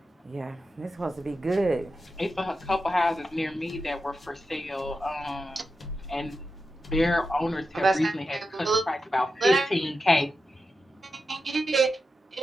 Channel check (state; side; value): normal; both; correlation 0.90